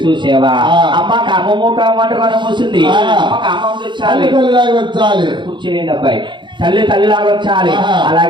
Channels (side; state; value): left; late; 0.23 ms